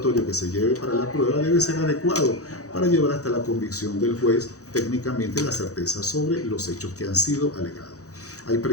que se lleve para la prueba debe ser adecuado para llevar hasta la convicción del juez técnicamente la certeza sobre los hechos que han sido alegados. Hay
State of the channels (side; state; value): right; late; 0.66 ms